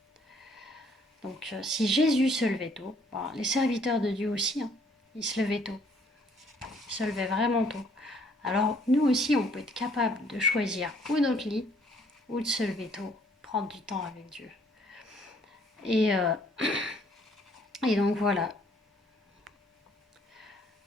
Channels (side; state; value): both; normal; correlation 0.62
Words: Donc si Jésus se levait tôt, les serviteurs de Dieu aussi, hein, ils se levaient tôt. Ils se levaient vraiment tôt. Alors nous aussi, on peut être capable de choisir ou notre lit, ou de se lever tôt, prendre du temps avec Dieu. Et, euh, et donc voilà,